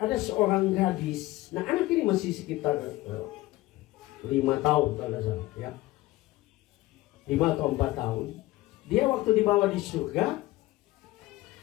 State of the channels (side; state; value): right; quieter; 18.2 dB